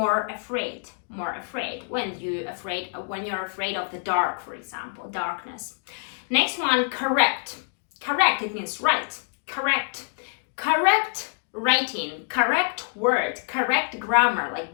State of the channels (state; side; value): silent; right; 61 dB below the other